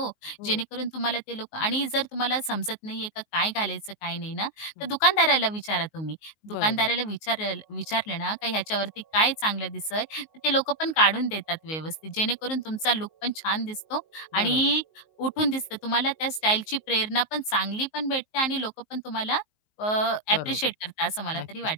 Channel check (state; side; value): late; right; 19 ms